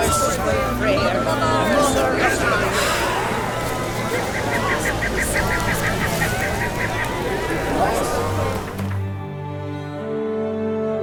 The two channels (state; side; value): identical; both; correlation 1.00